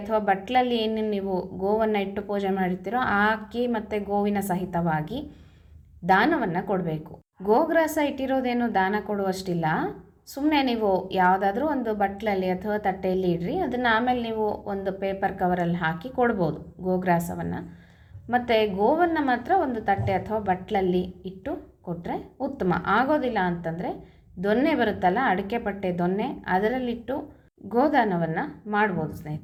ಬಟ್ಲಲ್ಲಿ ಏನು ನೀವು ಗೋವನ್ನು ಇಟ್ಟು ಪೂಜೆ ಮಾಡಿರ್ತೀರೋ ಆ ಅಕ್ಕಿ ಮತ್ತು ಗೋವಿನ ಸಹಿತವಾಗಿ ದಾನವನ್ನು ಕೊಡಬೇಕು. ಗೋಗ್ರಾಸ ಇಟ್ಟಿರೋದೇನು ದಾನ ಕೊಡುವಷ್ಟಿಲ್ಲ. ಸುಮ್ಮನೆ ನೀವು ಯಾವುದಾದ್ರೂ ಒಂದು ಬಟ್ಲಲ್ಲಿ ಅಥವಾ ತಟ್ಟೆಯಲ್ಲಿ ಇಡ್ರಿ, ಅದನ್ನು ಆಮೇಲೆ ನೀವು ಒಂದು ಪೇಪರ್ ಕವರಲ್ಲಿ ಹಾಕಿ ಕೊಡ್ಬೋದು ಗೋಗ್ರಾಸವನ್ನು. ಮತ್ತು ಗೋವನ್ನು ಮಾತ್ರ ಒಂದು ತಟ್ಟೆ ಅಥವಾ ಬಟ್ಲಲ್ಲಿ ಇಟ್ಟು ಕೊಟ್ಟರೆ ಉತ್ತಮ. ಆಗೋದಿಲ್ಲ ಅಂತಂದರೆ ದೊನ್ನೆ ಬರುತ್ತಲ್ಲ, ಅಡಿಕೆ ಪಟ್ಟೆ ದೊನ್ನೆ, ಅದರಲ್ಲಿಟ್ಟು ಗೋದಾನವನ್ನು ಮಾಡ್ಬೋದು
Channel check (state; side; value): identical; both; correlation 1.00